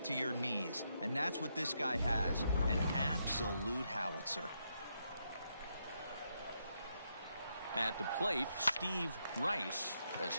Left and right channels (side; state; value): both; inverted; correlation -0.79